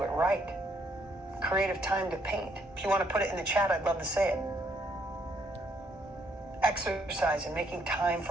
it right. Creative time to paint. If you want to put it in the chat, I'd love to say it. Exercise and making time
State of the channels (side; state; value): both; normal; correlation 0.70